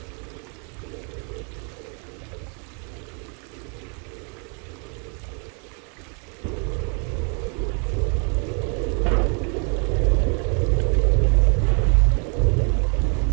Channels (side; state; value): left; quieter; 38.4 dB